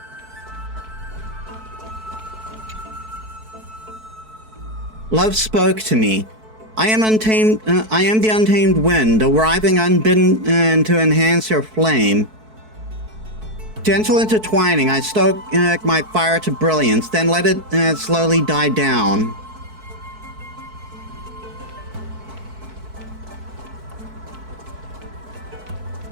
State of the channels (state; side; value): late; left; 4.6 ms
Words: Love spoke to me. I am untamed. I am the untamed wind, arriving unbidden to enhance your flame. Gentle intertwining, I stoke my fire to brilliance, then let it slowly die down.